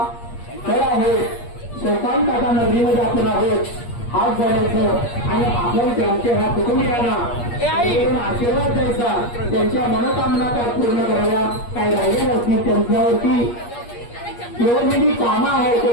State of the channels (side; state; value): right; late; 8.5 ms